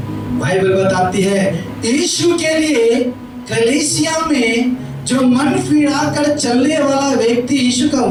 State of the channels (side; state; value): both; identical; correlation 1.00